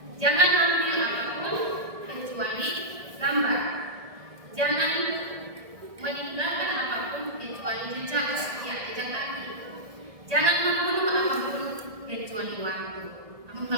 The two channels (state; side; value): late; left; 1.6 ms